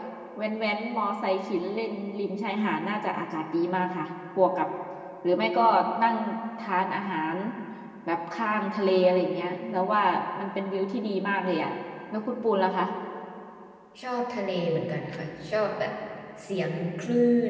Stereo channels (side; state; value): both; identical; correlation 1.00